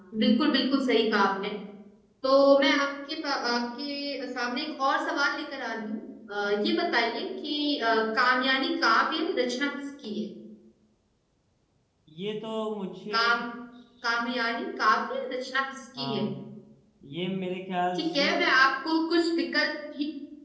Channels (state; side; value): identical; both; correlation 1.00